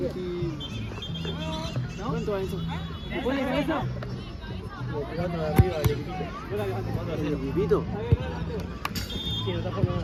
¿No? ¿Cuánto va eso? ¿Se puede de cabeza? Jugando de arriba al equipito. Yo la levanto cuando ¿El equipito? Sí, no está formando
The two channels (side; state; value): both; identical; correlation 1.00